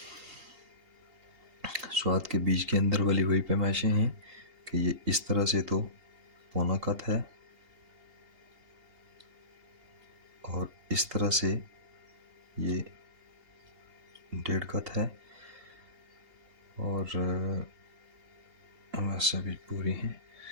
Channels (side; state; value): left; late; 2.8 ms